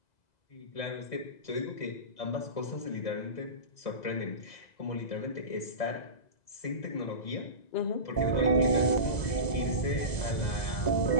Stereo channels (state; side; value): late; right; 2.0 ms